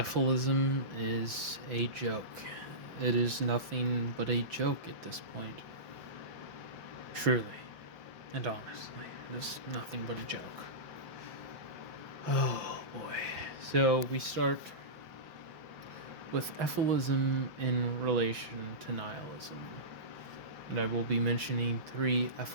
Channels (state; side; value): late; left; 5.6 ms